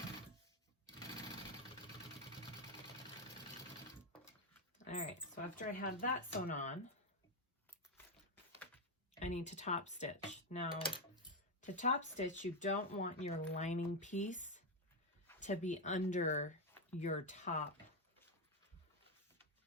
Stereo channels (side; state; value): both; normal; correlation 0.06